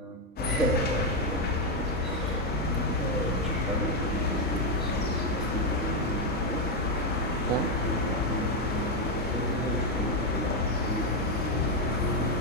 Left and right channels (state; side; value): normal; both; correlation 0.04